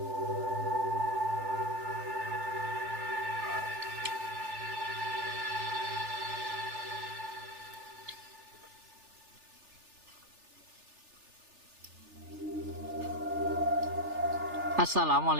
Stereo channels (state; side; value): late; left; 3.4 ms